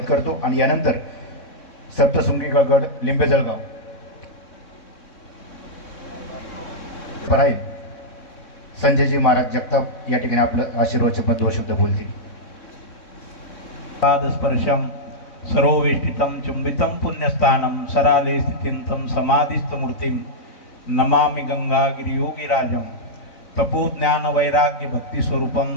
करतो. आणि यानंतर सप्तशृंगी गड लिंबे जळगाव पराई संजयजी महाराज जगताप या ठिकाणी आपलं आशीर्वादचे पद व शब्द बोलतील. पादस्पर्शम सर्ववेष्टितं चुंबितं पुण्यस्थानं सराले स्थितिं समाधिस्थमूर्तिं नमामि गंगागिरियोगिराजं तपोज्ञान वैराग्य भक्ति स्वरूपं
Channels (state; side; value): late; right; 3.6 ms